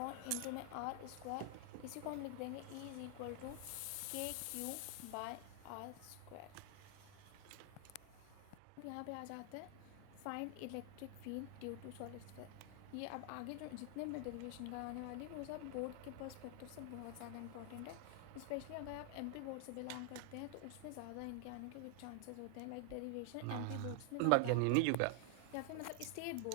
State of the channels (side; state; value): both; different; correlation 0.00